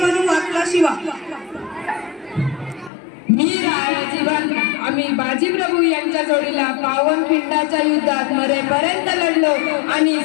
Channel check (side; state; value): right; drops out; at 2.9 s